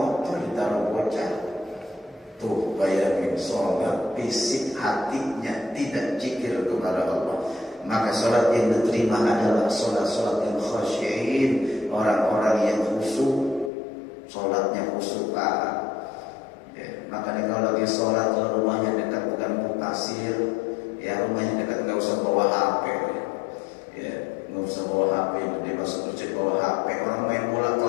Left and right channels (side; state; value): right; drops out; at 13.7 s